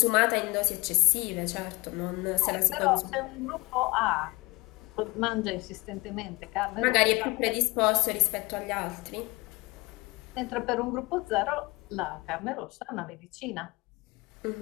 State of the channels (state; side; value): quieter; right; 24.2 dB